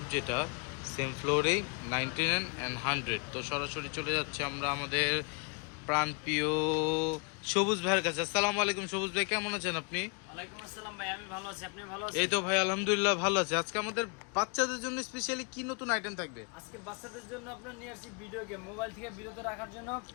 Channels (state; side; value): quieter; right; 34.8 dB